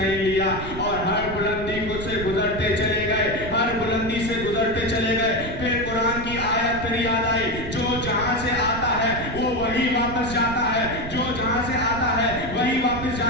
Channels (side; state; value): right; noise; rumble, 9 dB below the sound